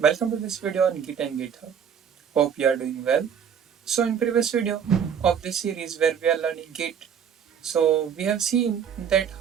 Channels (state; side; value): quieter; left; 7.8 dB